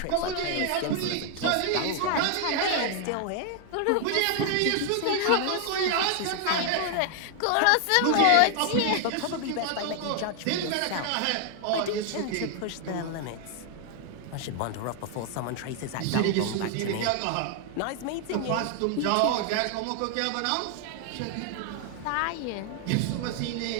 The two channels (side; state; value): both; different; correlation 0.00